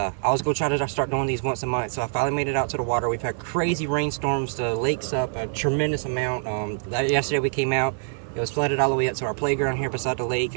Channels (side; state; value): left; silent; 55 dB below the other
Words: was going to try to start doing these once a month. So I finally made it out to the water. We've had crazy rainstorms. The lake's up a tremendous amount. Yesterday we came out. It was flooded all the way up to our playground here beside the lake,